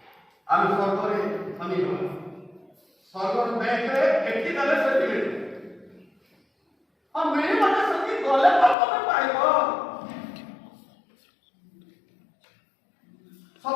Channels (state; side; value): drops out; right; at 8.8 s